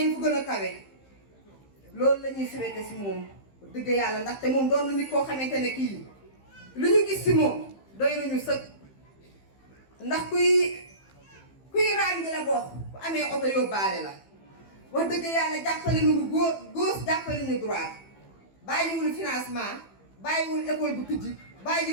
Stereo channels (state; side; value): late; right; 15 ms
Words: fu gën a kawe loolu la ñuy souhaité si moom dëgg yàlla ndaxte moom doon na nit koo xamante ne kii lu ñu gis si moom doy nañu sëkk ndax kuy raam di la bokk bu amee oto yóbbaale la wax dëgg yàlla jàppale nañu gauche jàppale nañu droite bàyyiwul financement bàyyiwul école bu tijji